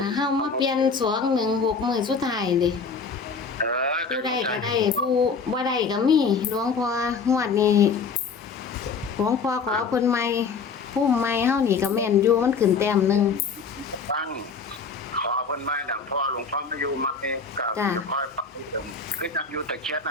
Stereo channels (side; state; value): right; quieter; 5.2 dB